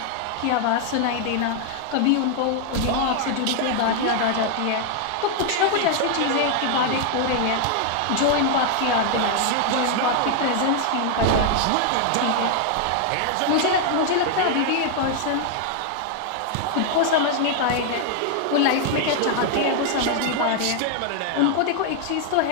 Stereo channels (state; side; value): different; both; correlation 0.00